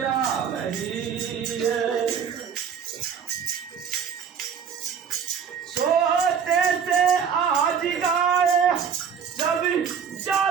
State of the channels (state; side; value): quieter; left; 7.2 dB